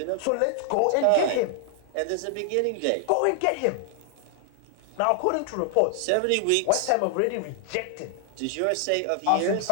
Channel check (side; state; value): both; different; correlation 0.00